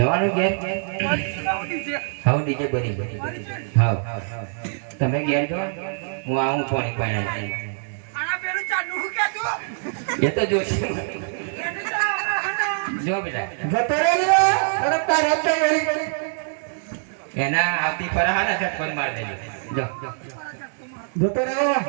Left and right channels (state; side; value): silent; left; digital silence